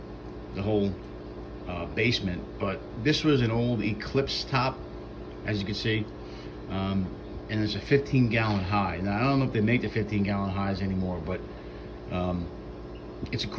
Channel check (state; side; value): identical; both; correlation 1.00